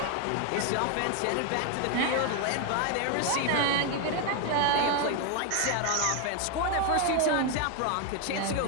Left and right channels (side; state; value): both; different; correlation 0.01